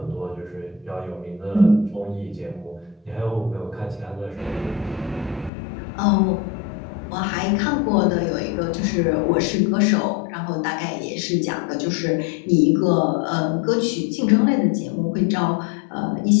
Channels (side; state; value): right; drops out; at 5.5 s